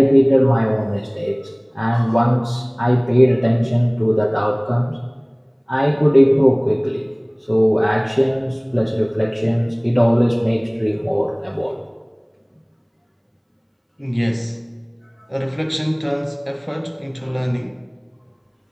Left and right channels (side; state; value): both; identical; correlation 1.00